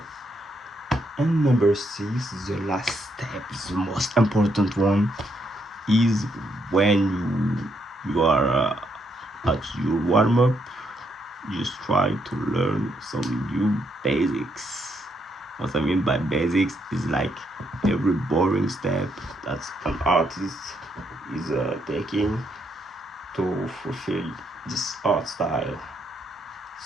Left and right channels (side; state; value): both; normal; correlation 0.76